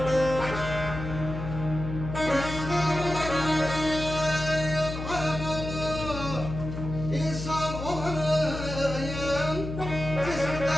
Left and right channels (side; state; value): left; noise; hum, 7 dB below the sound